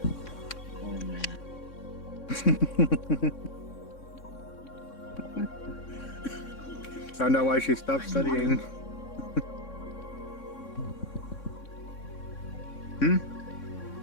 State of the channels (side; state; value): right; late; 3.6 ms